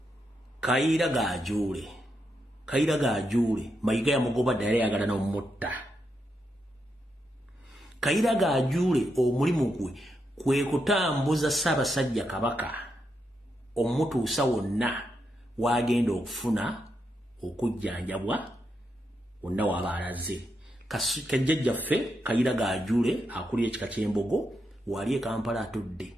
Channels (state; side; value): normal; both; correlation 0.83